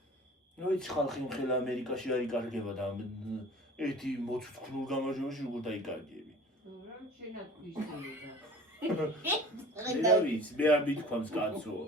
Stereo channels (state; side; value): normal; both; correlation 0.43